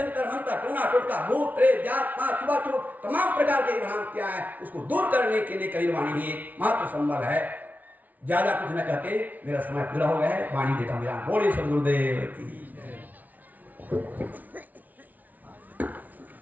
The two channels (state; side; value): late; left; 0.077 ms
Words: मंतर, टूना टोटका, भूत प्रेत, जात पात, छुआछूत, तमाम प्रकार की भ्रांतियां हैं, उसको दूर करने के लिए कबीर वाणी ही एकमात्र संबल है। ज्यादा कुछ न कहते, मेरा समय पूरा हो गया है, वाणी देता हूँ विराम। बोलिए सद्गुरुदेव की।